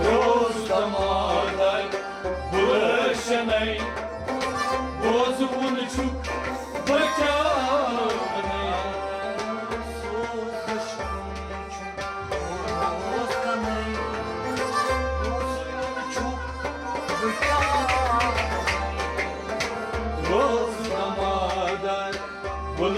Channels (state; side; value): identical; both; correlation 1.00